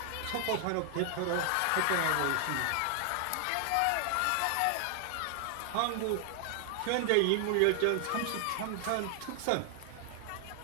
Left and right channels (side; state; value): both; different; correlation 0.00